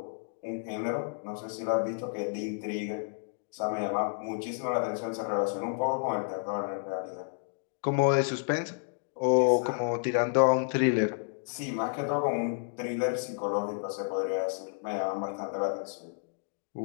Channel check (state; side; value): silent; right; digital silence